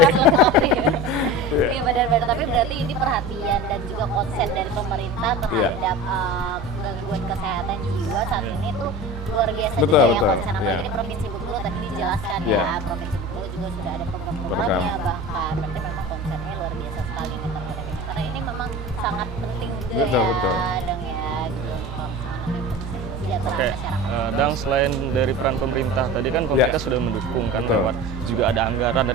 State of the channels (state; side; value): normal; both; correlation 0.34